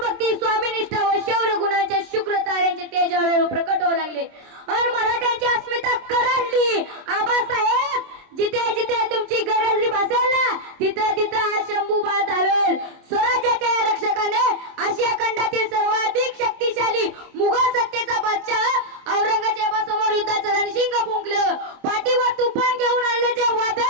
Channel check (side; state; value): left; late; 27 ms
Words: स्वामीनिष्ठा व शौर्य गुणांच्या शुक्र ताऱ्यांचे तेज हळूहळू प्रकट होऊ लागले आणि मराठ्यांची अस्मिता कडाडली। आबासाहेब जिथे जिथे तुमची गरज भासेल ना तिथे तिथे हा शंभूबा धावेल। स्वराज्याच्या रक्षकाने आशिया खंडातील सर्वाधिक शक्तिशाली मुघल सत्तेचा बादशाह औरंगजेबासमोर युद्धाचं रणशिंग फुंकलं। पाठीवर तुफान घेऊन आलेले जे